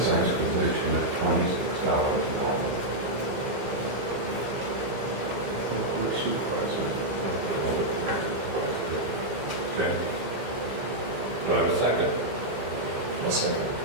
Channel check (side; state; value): left; late; 16 ms